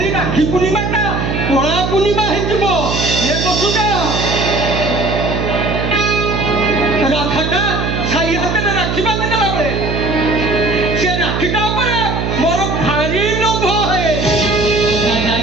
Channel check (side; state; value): right; noise; hum, 1 dB below the sound